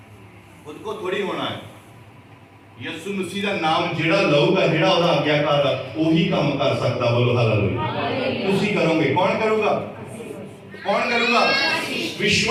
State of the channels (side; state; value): both; identical; correlation 1.00